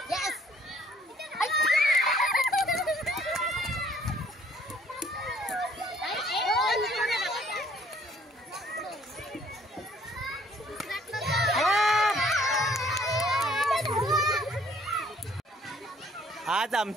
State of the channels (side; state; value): both; normal; correlation 0.60